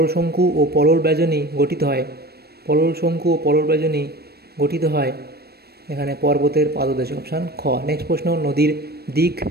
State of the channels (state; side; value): late; left; 0.46 ms